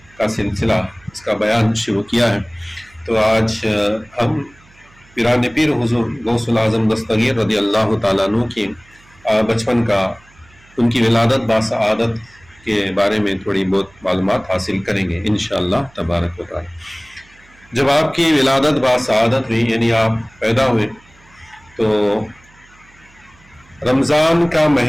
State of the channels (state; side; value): noise; right; hum, 28 dB below the sound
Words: کا سلسلہ، اس کا بیان شروع کیا ہے۔ تو آج ہم پیران پیر حضور غوث العظم دستگیر رضی اللہ تعالیٰ عنہ کی بچپن کا، ان کی ولادت باسعادت کے بارے میں تھوڑی بہت معلومات حاصل کریں گے انشاءاللہ تبارک و تعالی۔ جب آپ کی ولادت باسعادت ہوئی، یعنی آپ پیدا ہوئے، تو رمضان کا